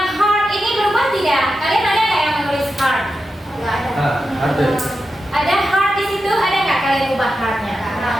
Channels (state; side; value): normal; both; correlation 0.89